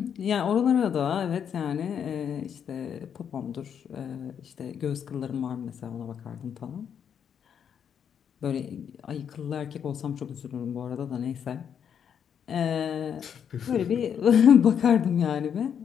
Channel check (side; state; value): right; quieter; 8.1 dB